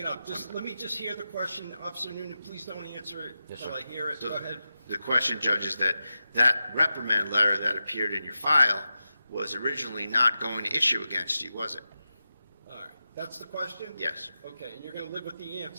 up. Let me just hear the question, Officer Noonan, please don't answer it Yes, until sir. I hear it, So go ahead. The question, Judge, is that reprimand letter that appeared in your file was originally not going to issue against you, was it? All right, that's the question? Yes. Okay, and you're gonna live with the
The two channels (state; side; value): inverted; both; correlation -0.92